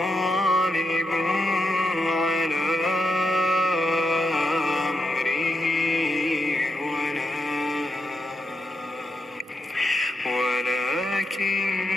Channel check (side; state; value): both; normal; correlation 0.83